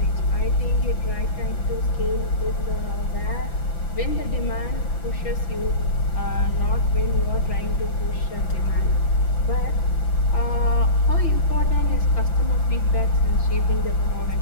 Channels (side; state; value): right; late; 5.9 ms